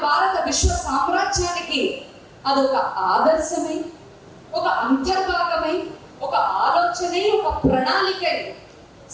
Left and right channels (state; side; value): identical; both; correlation 1.00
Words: భారత విశ్వ సామ్రాజ్యానికి అదొక ఆదర్శమై, ఒక అంతర్భాగమై, ఒక ఆలోచనై, ఒక ప్రణాళికై